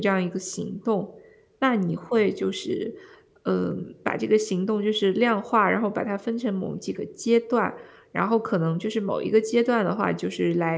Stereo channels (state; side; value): identical; both; correlation 1.00